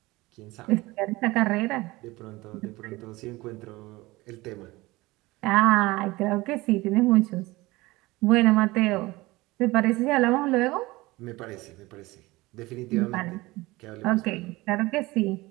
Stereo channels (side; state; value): left; quieter; 20.7 dB